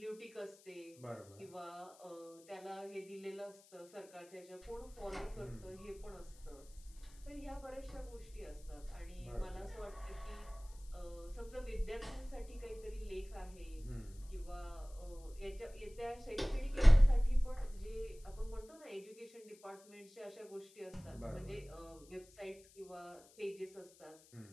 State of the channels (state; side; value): noise; left; hiss, 24 dB below the sound